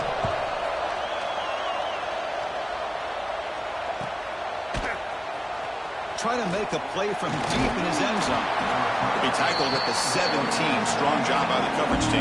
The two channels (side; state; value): both; identical; correlation 1.00